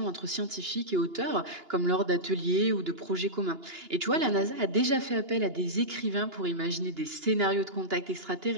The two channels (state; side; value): late; left; 2.9 ms